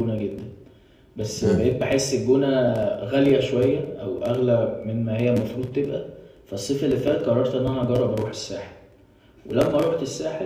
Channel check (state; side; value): identical; both; correlation 1.00